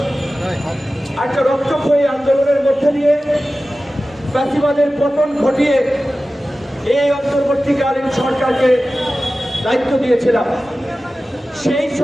একটা রক্তক্ষয়ী আন্দোলনের মধ্যে দিয়ে ফ্যাসিবাদের পতন ঘটিয়ে এই অন্তর্বর্তীকালীন সরকারকে দায়িত্ব দিয়েছিলাম। সেই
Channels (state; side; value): normal; both; correlation 0.95